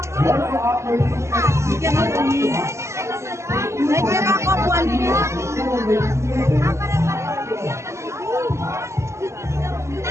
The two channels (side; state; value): left; late; 0.14 ms